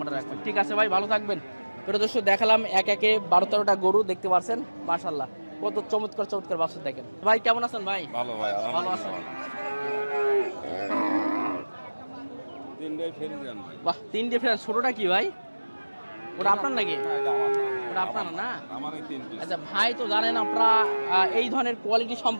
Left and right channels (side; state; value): both; inverted; correlation -1.00